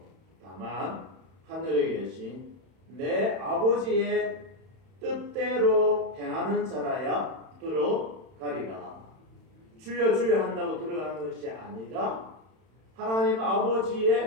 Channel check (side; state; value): left; late; 31 ms